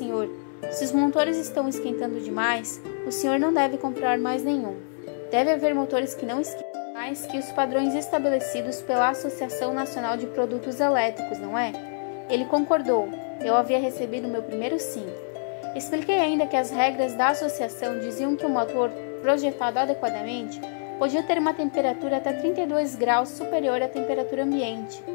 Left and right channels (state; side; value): silent; right; digital silence